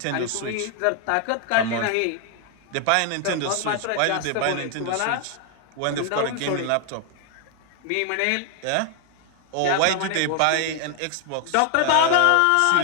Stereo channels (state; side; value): different; both; correlation 0.00